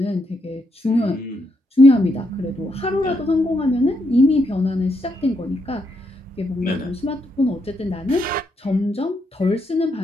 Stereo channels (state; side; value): normal; both; correlation 0.79